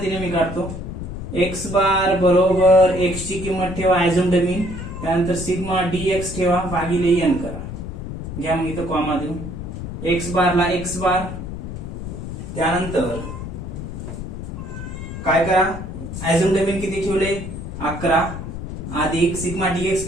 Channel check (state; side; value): noise; left; rumble, 7 dB below the sound